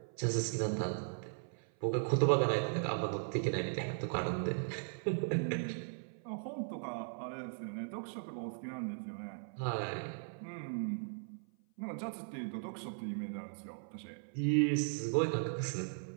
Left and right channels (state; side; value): silent; left; 53 dB below the other